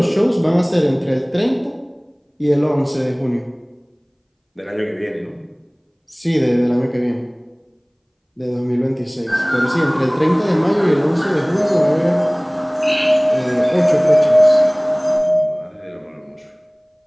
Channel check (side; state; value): both; identical; correlation 1.00